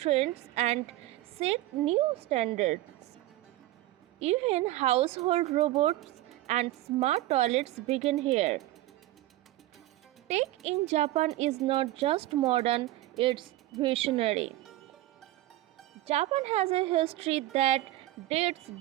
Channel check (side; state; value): left; quieter; 16.1 dB